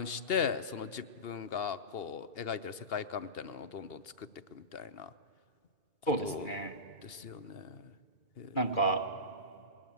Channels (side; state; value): right; late; 2.8 ms